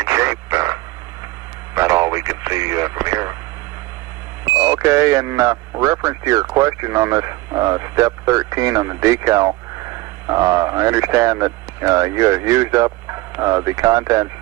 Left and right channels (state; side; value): quieter; left; 19.9 dB